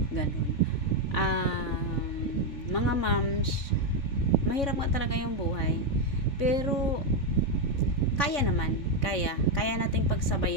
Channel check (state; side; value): late; right; 3.6 ms